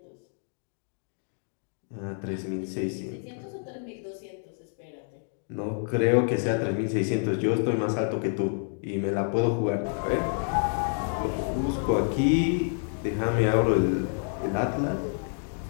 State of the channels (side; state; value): right; silent; 59 dB below the other